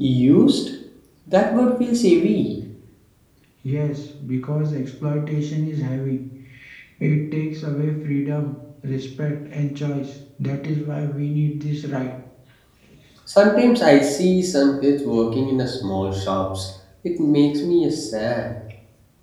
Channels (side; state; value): both; identical; correlation 1.00